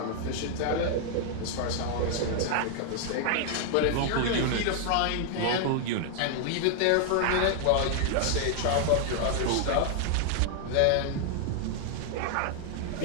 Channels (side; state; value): both; different; correlation 0.00